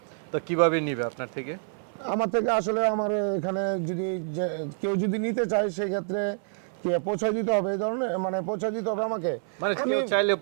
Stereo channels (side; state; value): left; silent; 55 dB below the other